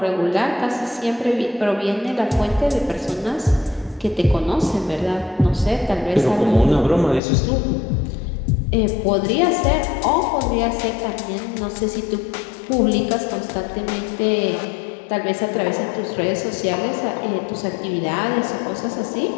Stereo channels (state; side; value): drops out; right; at 7.2 s